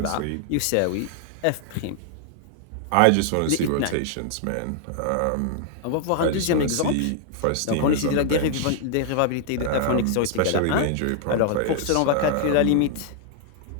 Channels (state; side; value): different; both; correlation 0.00